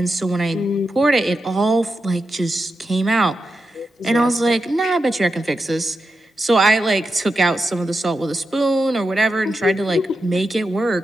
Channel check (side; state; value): both; normal; correlation 0.88